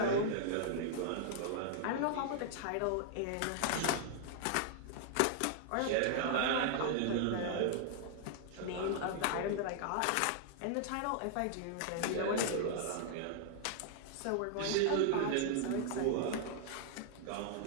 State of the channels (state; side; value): different; both; correlation 0.00